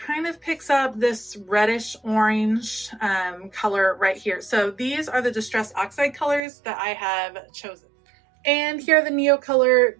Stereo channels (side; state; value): left; drops out; at 6.4 s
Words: of picks up this reddish orange color right here. So these are the Distress Oxide colors that I have chosen. And here are the